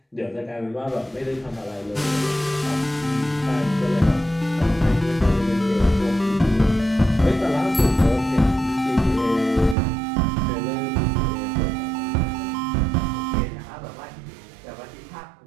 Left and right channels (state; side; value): drops out; left; at 9.8 s